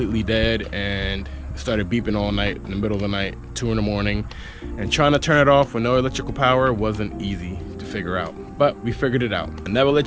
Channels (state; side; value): identical; both; correlation 1.00